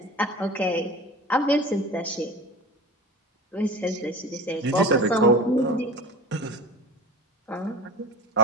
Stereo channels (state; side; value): normal; both; correlation 0.37